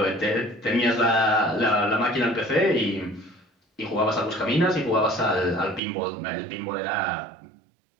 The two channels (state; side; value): drops out; left; at 5.8 s